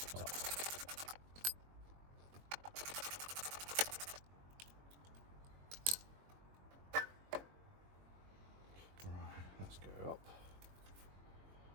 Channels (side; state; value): left; late; 21 ms